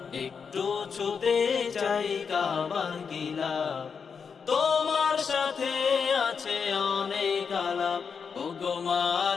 একটু ছুতে চাই কাবার গিলা, তোমার সাথে আছে অনেক আলাপ। ওগো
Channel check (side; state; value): right; quieter; 6.0 dB